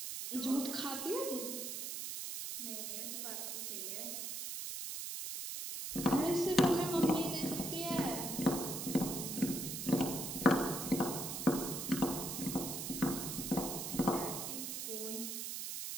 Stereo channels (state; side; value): noise; right; hiss, 5 dB below the sound